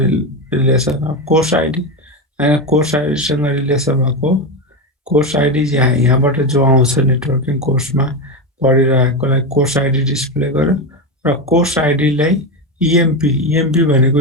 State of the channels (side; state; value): both; normal; correlation 0.14